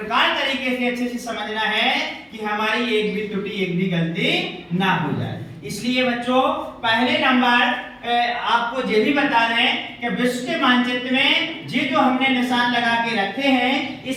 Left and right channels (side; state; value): both; identical; correlation 1.00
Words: तरीके से अच्छे से समझना है कि हमारी एक भी त्रुटि, एक भी गलती ना हो जाए। इसलिए बच्चों, पहले नंबर आपको ये भी बता दें कि विश्व के मानचित्र में ये जो हमने निशान लगा के रखे हैं,